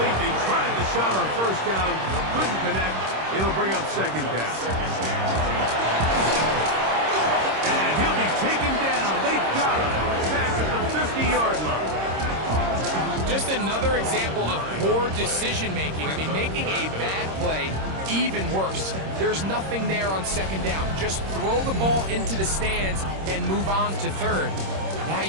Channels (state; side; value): late; left; 26 ms